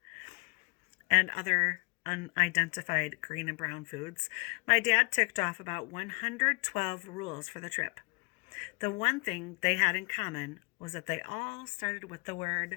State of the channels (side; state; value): right; quieter; 31.3 dB